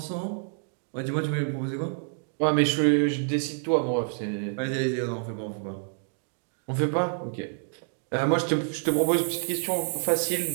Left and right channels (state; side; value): silent; left; 59 dB below the other